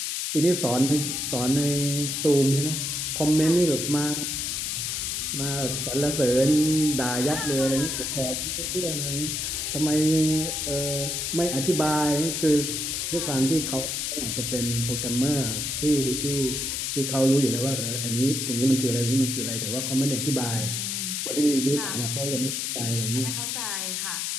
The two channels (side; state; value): left; noise; hiss, 2 dB below the sound